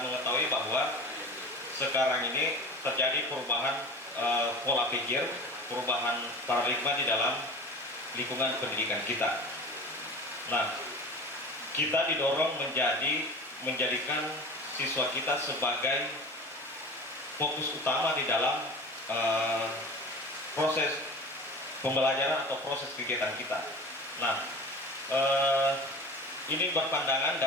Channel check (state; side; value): normal; both; correlation 0.36